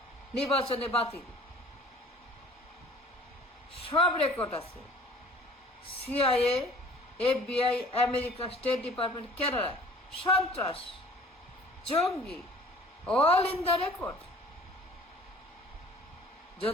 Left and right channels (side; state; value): both; normal; correlation 0.49